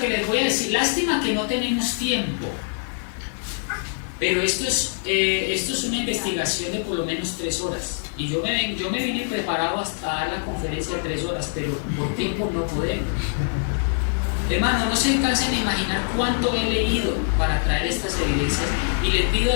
les voy a decir, lástima que no tenemos tiempo, pero esto es una investigación de por lo menos 3 horas. Y yo me vine preparado hasta dar la conferencia de 3 horas, pero por tiempo no podemos. Hermano, no se cansen de imaginar cuánto he leído para traer estas evidencias, y le pido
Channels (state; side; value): silent; right; digital silence